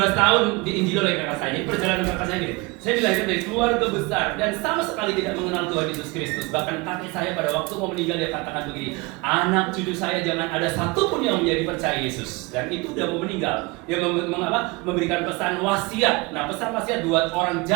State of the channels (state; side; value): quieter; left; 25.1 dB